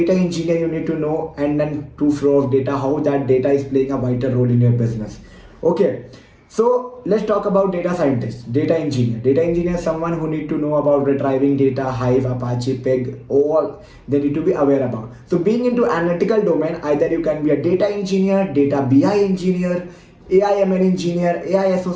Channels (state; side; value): identical; both; correlation 1.00